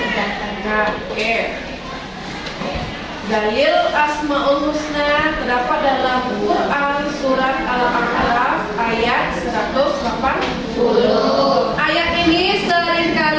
Nah, oke. Dalil Asmaul Husna terdapat dalam Quran surat Al-A'raf ayat 180. Ayat ini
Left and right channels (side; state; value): both; identical; correlation 1.00